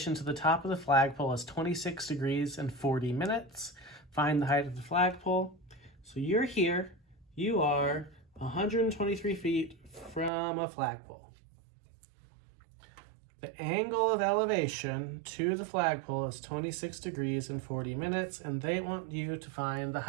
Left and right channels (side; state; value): left; drops out; at 10.3 s